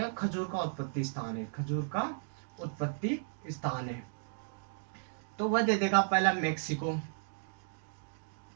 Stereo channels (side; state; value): left; silent; digital silence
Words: खजूर का उत्पत्ति स्थान है, खजूर का उत्पत्ति स्थान है। तो वह दे देगा पहला मैक्सिको,